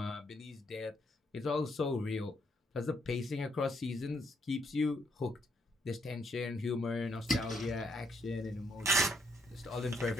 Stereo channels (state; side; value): normal; both; correlation 0.74